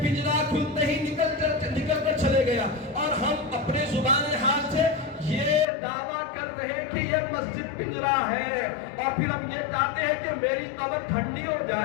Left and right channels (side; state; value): right; drops out; at 5.7 s